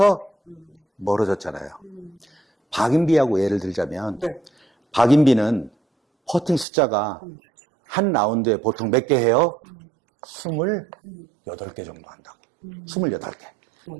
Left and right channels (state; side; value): drops out; left; at 6.7 s